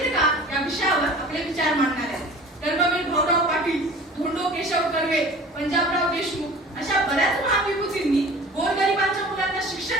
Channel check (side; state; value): both; normal; correlation 0.43